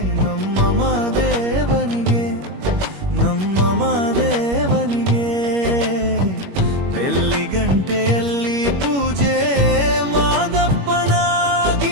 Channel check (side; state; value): left; late; 21 ms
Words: ನಮ್ಮ ಮಾದೇವನಿಗೆ ನಮ್ಮ ಮಾದೇವನಿಗೆ ಬೆಳ್ಳಿ ಗಂಟೆಯಲ್ಲಿ ಪೂಜೆ ಮಾದಪ್ಪನ